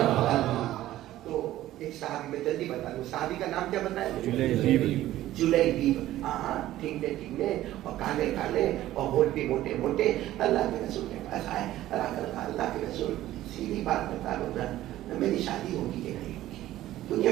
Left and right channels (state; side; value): quieter; left; 14.5 dB